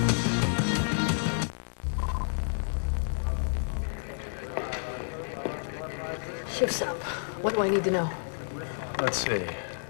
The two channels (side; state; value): right; silent; digital silence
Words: Shift's up. What do I need to know? Let's see.